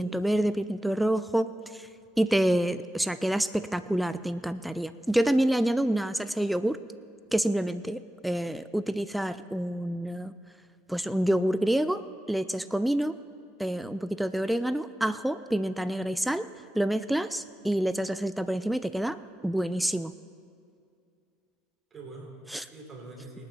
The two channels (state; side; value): normal; both; correlation 0.95